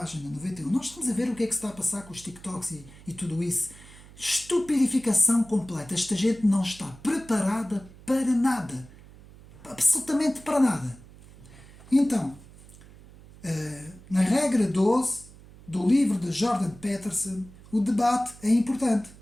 91. Nós estamos a ver o que é que se está a passar com os TikToks e tudo isso. Estupidificação completa. Esta gente não está preparada para nada. Absolutamente para nada. Então, na regra 12 do livro de Jordan Peterson, o debate é importante.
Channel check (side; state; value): right; noise; hum, 21 dB below the sound